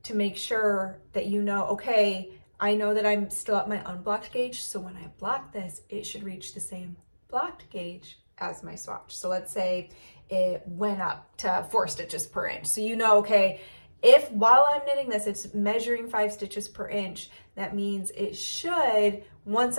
to make sure that you know, okay, I know that I'm still at my unblocked gauge, so when I block this, it should reach the same blocked gauge as my swatch. So let's say it went up to 4 stitches per inch. So you know, okay, If while I'm knitting this, it's measuring 5 stitches per inch, that means it should, once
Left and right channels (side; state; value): both; inverted; correlation -1.00